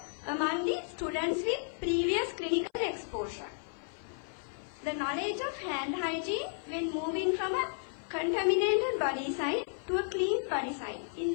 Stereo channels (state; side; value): silent; right; 56 dB below the other